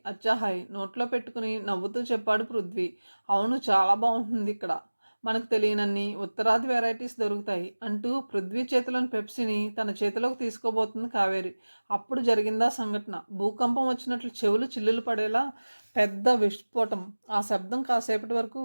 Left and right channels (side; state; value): both; inverted; correlation -1.00